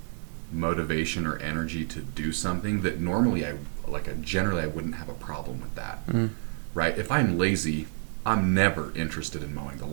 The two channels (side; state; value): left; silent; digital silence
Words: motivation or energy to do something that normally generally I wouldn't have a problem with that. Right? If I'm lazy, I'm never interested in mowing the